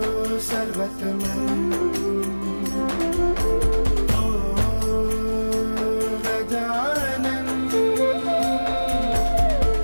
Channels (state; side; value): inverted; both; correlation -1.00